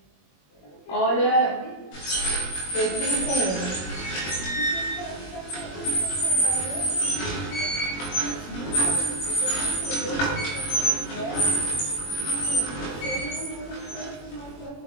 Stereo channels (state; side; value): late; right; 21 ms